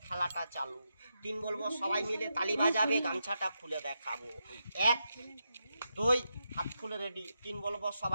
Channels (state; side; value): inverted; both; correlation -0.85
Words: খেলাটা চালু। 3 বলবো, সবাই মিলে তালি বাজাবে, গামছাটা খুলে দেখাবো। 1 2 হাত খুলে রেডি। 3 বলবো,